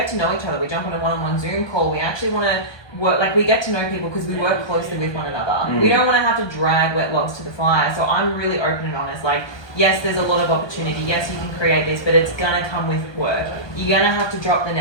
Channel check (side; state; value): right; late; 1.2 ms